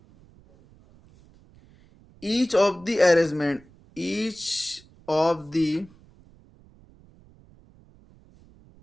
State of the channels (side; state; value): right; noise; rumble, 27 dB below the sound